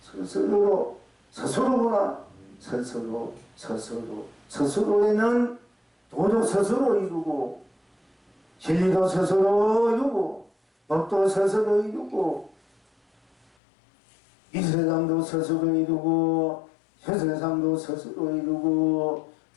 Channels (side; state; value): right; drops out; at 13.5 s